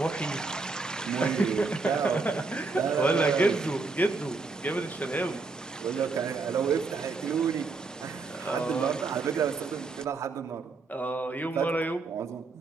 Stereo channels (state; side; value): quieter; left; 4.0 dB